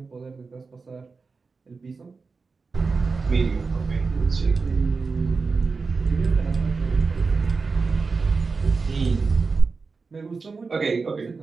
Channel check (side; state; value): left; quieter; 4.5 dB